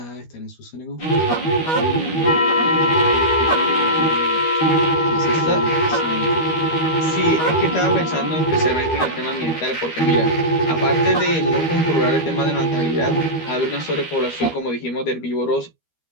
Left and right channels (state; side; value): late; right; 13 ms